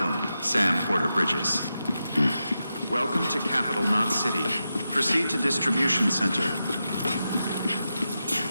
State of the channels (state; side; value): inverted; both; correlation -0.89